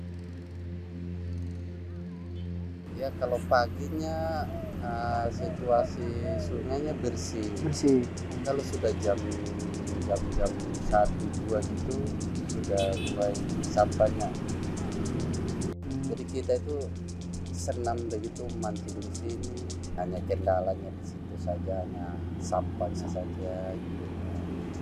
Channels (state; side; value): identical; both; correlation 1.00